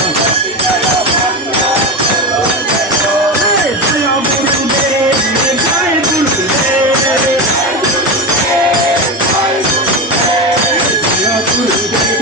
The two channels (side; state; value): both; normal; correlation 0.19